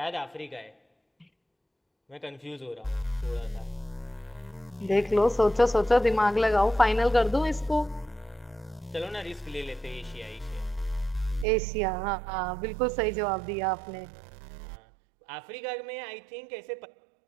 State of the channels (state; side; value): drops out; left; at 11.5 s